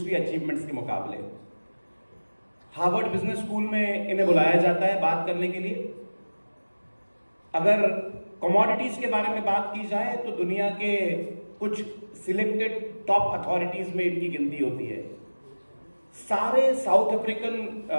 अचीवमेंट्स के मुकाबले। हार्वर्ड बिजनेस स्कूल में इन्हें बुलाया जाता है बात करने के लिए। अगर कमोडिटीज के बारे में बात की जाए तो दुनिया के कुछ सिलेक्टेड टॉप अथॉरिटीज में इनकी गिनती होती है। सारे साउथ अफ्रीकन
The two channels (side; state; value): both; inverted; correlation -1.00